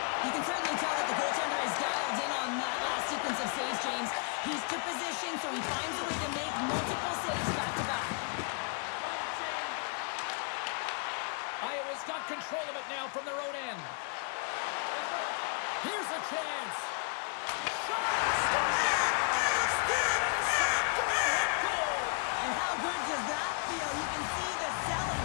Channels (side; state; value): right; quieter; 39.8 dB